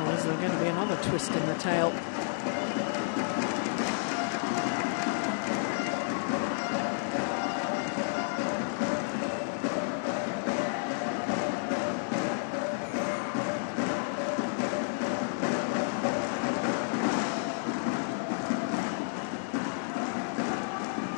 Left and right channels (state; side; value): silent; right; digital silence